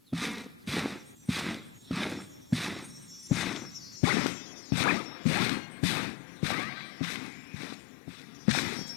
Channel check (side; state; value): right; drops out; at 4.0 s